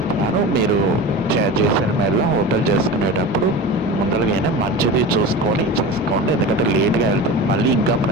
మీరు జైసల్మేర్లో హోటల్ చేసుకునేటప్పుడు ముందరగానే మంచిది చూసుకొని చేసుకోండి, ఎందుకంటే లేట్గా వెళ్తే మళ్ళీ ఇంకా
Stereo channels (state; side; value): normal; both; correlation 0.30